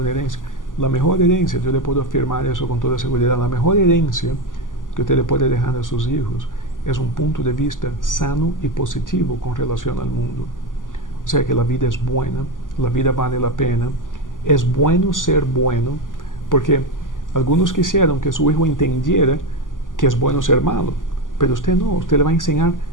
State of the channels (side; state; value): right; late; 0.88 ms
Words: herencia. La mejor herencia, yo le puedo afirmar eso con toda seguridad, la mejor herencia que usted le puede dejar a sus hijos es un punto de vista sano y positivo con relación al mundo. O sea que la vida es buena, la vida vale la pena, es bueno ser bueno, porque algunos quisieron que su hijo entendiera que es bueno ser malo, pero usted no, usted le va a enseñar